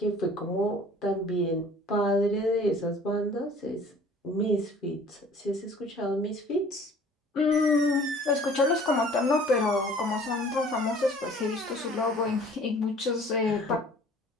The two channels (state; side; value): normal; both; correlation 0.50